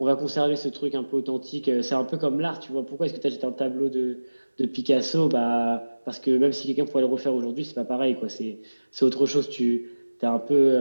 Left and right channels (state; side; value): inverted; both; correlation -1.00